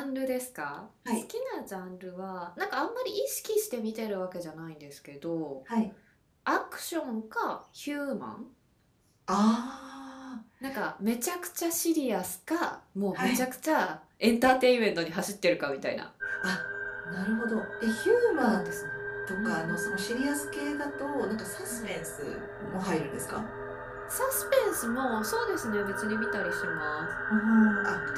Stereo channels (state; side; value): identical; both; correlation 1.00